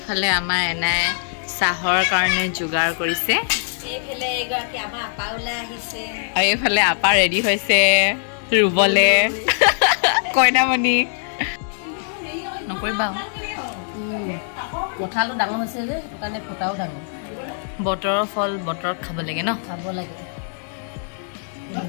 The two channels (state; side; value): silent; right; digital silence